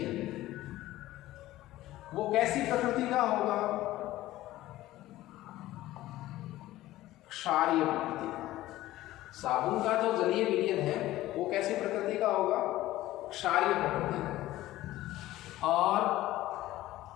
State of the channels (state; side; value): quieter; right; 15.8 dB